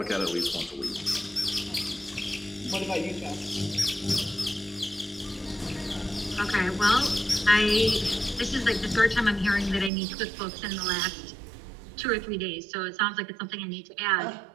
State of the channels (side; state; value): left; drops out; at 9.9 s